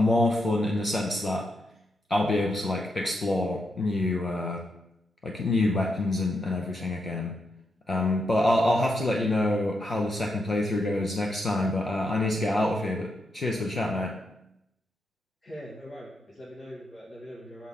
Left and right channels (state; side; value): normal; both; correlation 0.82